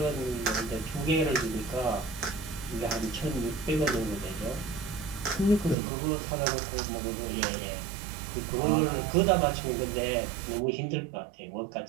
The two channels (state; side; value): drops out; left; at 5.8 s